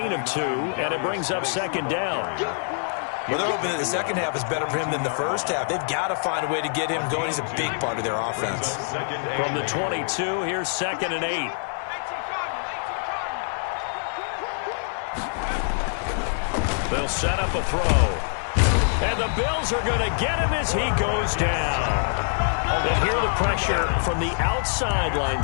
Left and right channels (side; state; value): right; silent; digital silence